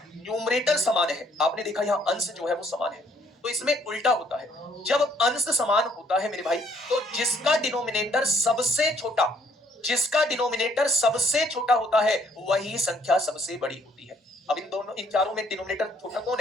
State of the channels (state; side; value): normal; both; correlation 0.65